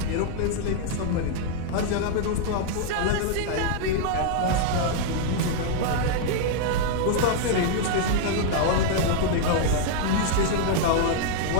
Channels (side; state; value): both; different; correlation -0.01